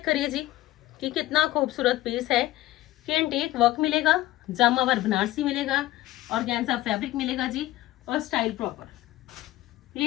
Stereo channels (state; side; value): quieter; right; 16.3 dB